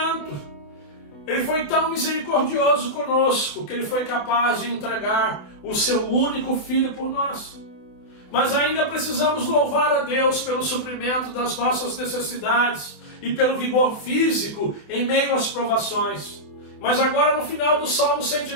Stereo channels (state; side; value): late; right; 28 ms